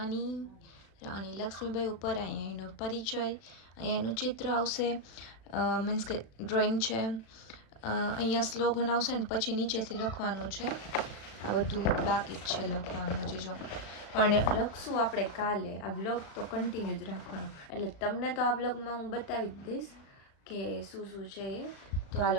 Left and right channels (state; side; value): late; right; 36 ms